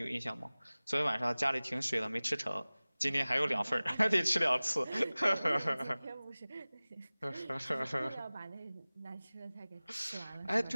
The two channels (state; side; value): inverted; both; correlation -0.99